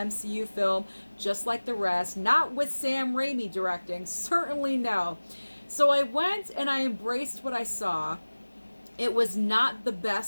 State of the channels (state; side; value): inverted; both; correlation -1.00